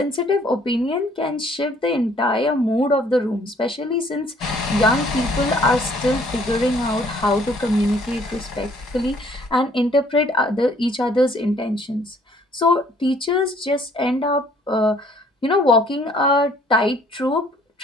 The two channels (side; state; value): both; normal; correlation 0.60